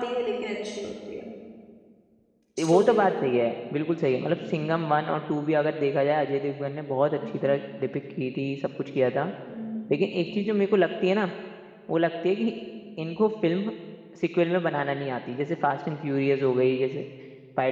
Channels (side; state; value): both; identical; correlation 1.00